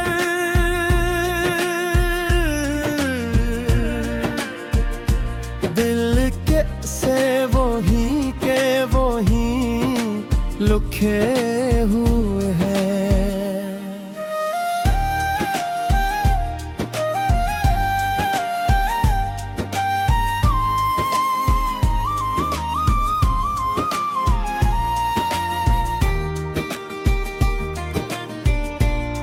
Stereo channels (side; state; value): both; identical; correlation 1.00